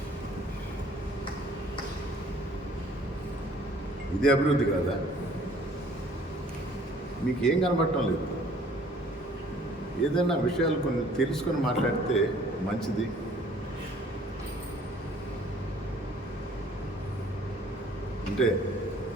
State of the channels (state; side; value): normal; both; correlation 0.56